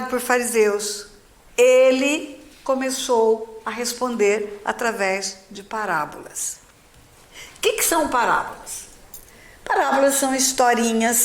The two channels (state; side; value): identical; both; correlation 1.00